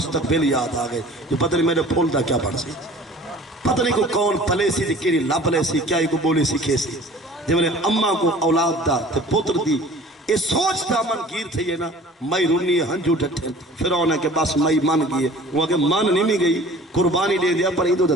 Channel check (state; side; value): normal; both; correlation 0.47